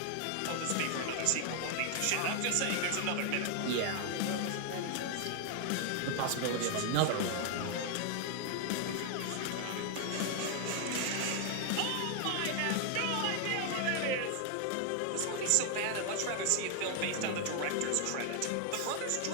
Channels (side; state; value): both; different; correlation 0.00